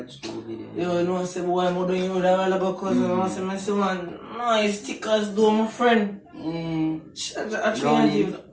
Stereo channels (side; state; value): both; identical; correlation 1.00